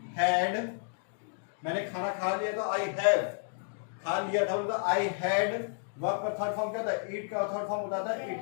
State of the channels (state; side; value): silent; right; digital silence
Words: हैड, मैंने खाना खा लिया था, आई हैव, खा लिया था उनका आई हैड। वर्ब का थर्ड फॉर्म क्या था, ईट का थर्ड फॉर्म होता है